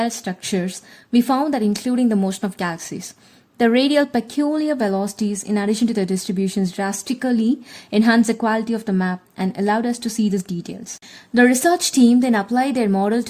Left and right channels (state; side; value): identical; both; correlation 1.00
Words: structures. We found that including the motion of galaxies, the radial peculiar velocities, in addition to the distributions, drastically enhance the quality of the map and allowed us to see these details. The research team then applied their model